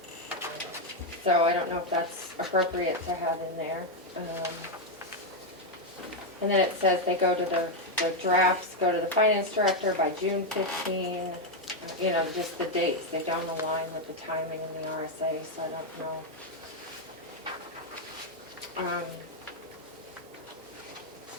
So I don't know if that's appropriate to have in there. And then it says they go to the drafts, go to the finance director by June 15. You know, just the dates, they don't align with the timing in the RSA, so I don't know.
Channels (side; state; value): both; normal; correlation 0.03